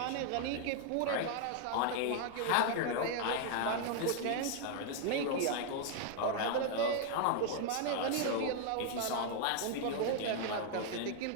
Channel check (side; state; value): both; different; correlation 0.00